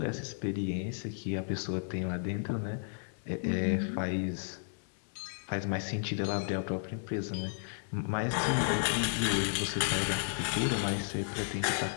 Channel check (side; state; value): right; silent; digital silence